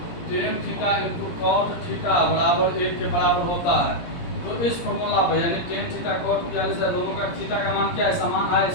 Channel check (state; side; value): late; right; 17 ms